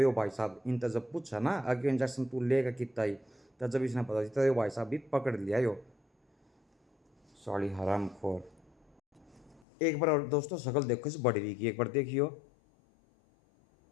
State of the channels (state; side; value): drops out; right; at 9.6 s